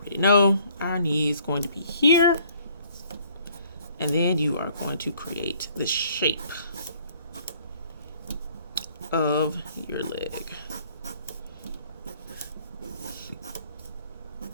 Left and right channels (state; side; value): inverted; both; correlation -0.60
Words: know our knee is going to be here. And then you are going to create the shape of your leg.